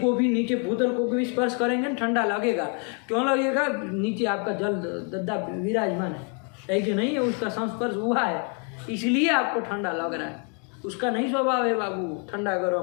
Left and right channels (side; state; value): right; quieter; 39.1 dB